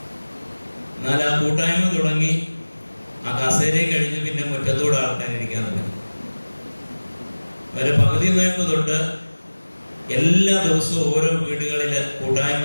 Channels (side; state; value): both; inverted; correlation -1.00